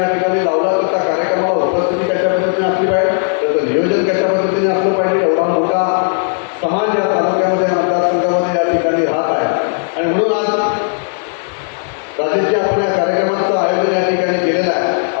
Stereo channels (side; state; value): right; silent; digital silence